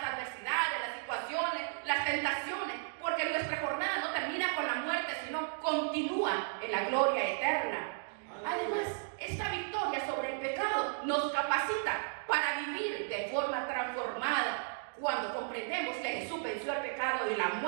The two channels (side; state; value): left; silent; digital silence